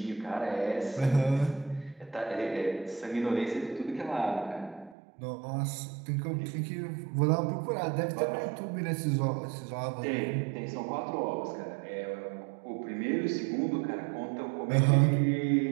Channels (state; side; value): drops out; left; at 5.0 s